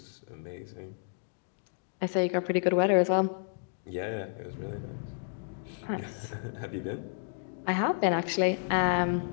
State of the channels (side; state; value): right; silent; digital silence